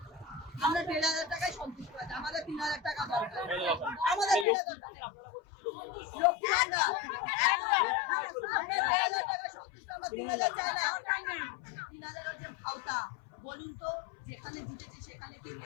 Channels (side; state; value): right; drops out; at 4.5 s